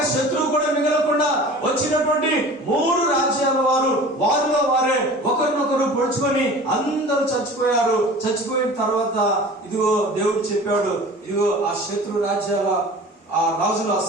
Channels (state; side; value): normal; both; correlation 0.41